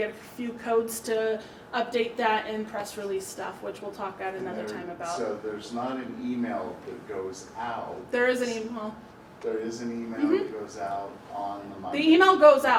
a few codes to update that and press release stuff, which we'll talk at another time about. So there's not an email that goes out. There is an email. There is an email that goes out on the Monday. The email goes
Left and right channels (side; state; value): both; identical; correlation 1.00